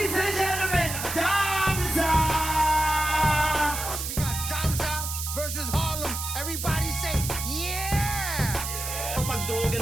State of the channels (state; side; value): noise; right; hiss, 5 dB below the sound